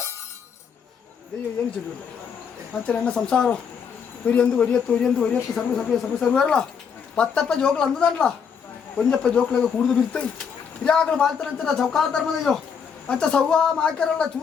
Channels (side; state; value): right; quieter; 6.7 dB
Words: ದೈವ ಏನು ಚೆಲ್ಲುಂಡ ಅಂಚ ನನ್ನ ಸಂಸಾರ ಒರಿಯತ್ತು ಸರ್ವರಲ್ಲ ಪತ್ತಪ್ಪ ಜೋಕ್ಲು ಅಂದದಲ್ಲ ಒಂಜಪ್ಪ ಜೋಕ್ಲಾಗ ಕುಡಿದು ಬಿರ್ತಾಯಿ ಹಿರಿಯಾಗಲು ಬಾಳ್ತಾರಂತ ಚೌಕಾಲ ಧರ್ಮದಯ್ಯೋ ಅಂಚ ಸವ್ವ ಮಾಕ್ಯಾರಲ್ಲ